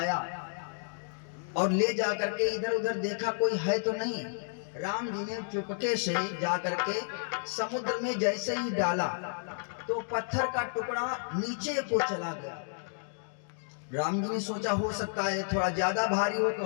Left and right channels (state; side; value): silent; right; digital silence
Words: और ले जा करके इधर उधर देखा कोई है तो नहीं। राम जी ने चुपके से जा करके समुद्र में जैसे ही डाला तो पत्थर का टुकड़ा नीचे को चला गया। राम जी ने सोचा हो सकता है थोड़ा ज्यादा भारी हो तो